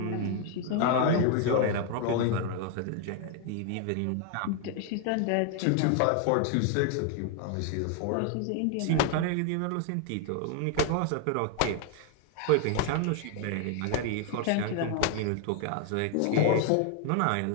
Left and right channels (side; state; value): both; different; correlation 0.00